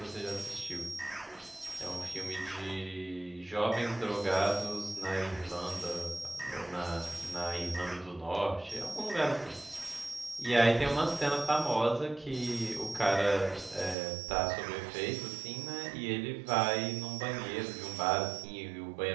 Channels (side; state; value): left; drops out; at 14.0 s